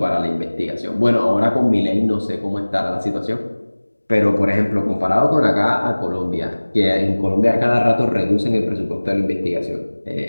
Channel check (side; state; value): both; inverted; correlation -1.00